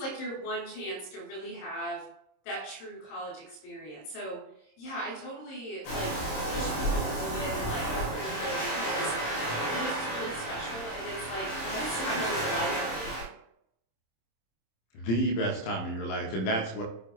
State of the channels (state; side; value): late; right; 26 ms